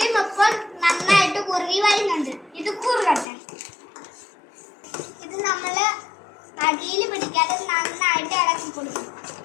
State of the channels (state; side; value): drops out; right; at 3.2 s